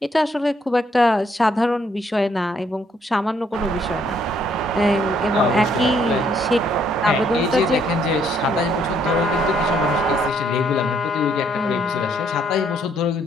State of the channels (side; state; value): both; normal; correlation 0.68